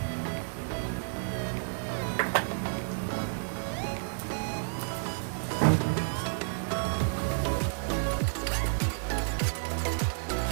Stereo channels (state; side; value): silent; left; 57 dB below the other